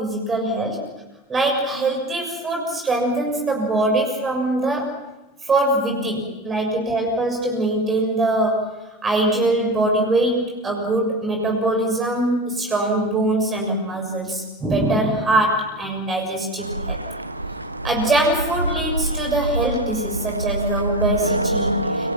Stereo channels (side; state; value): both; normal; correlation 0.27